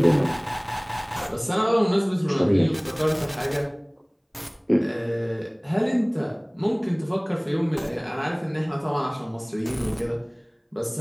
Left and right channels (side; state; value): both; identical; correlation 1.00